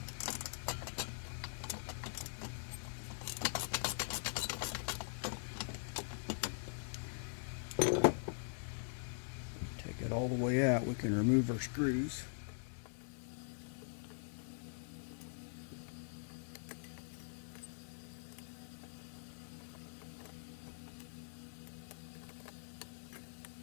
Take it all the way out, we can remove our screws.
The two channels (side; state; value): right; silent; digital silence